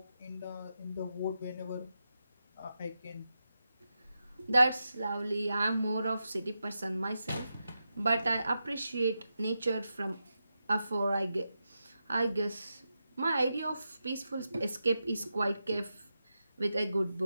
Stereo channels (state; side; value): inverted; both; correlation -0.88